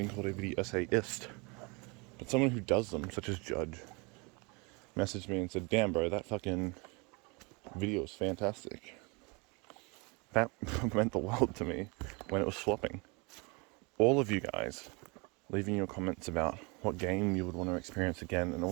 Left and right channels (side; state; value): left; quieter; 29.4 dB